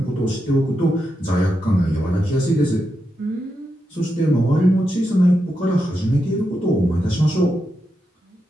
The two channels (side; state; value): both; normal; correlation 0.86